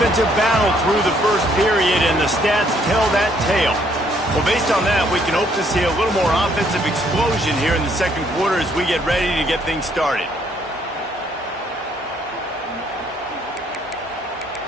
battle through the first period, and the stats tell that tale. Well, based on that, we can hope to see a little more offensive explosion here in the second quarter as we get ready to get things started.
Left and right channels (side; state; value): both; normal; correlation 0.67